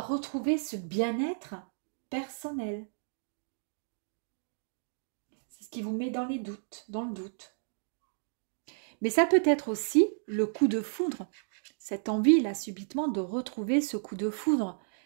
retrouver ce bien-être personnel. C'est ce qui vous met dans les doutes, dans le doute. Mais ça peut être aussi le coup de foudre, cette envie là subitement de retrouver ce coup de foudre,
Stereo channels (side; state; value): left; silent; digital silence